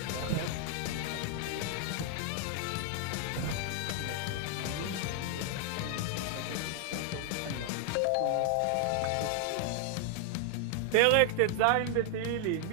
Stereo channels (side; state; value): both; different; correlation 0.00